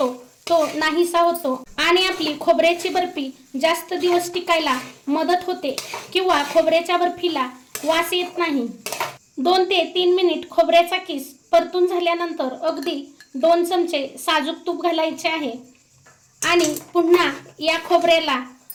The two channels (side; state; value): both; identical; correlation 1.00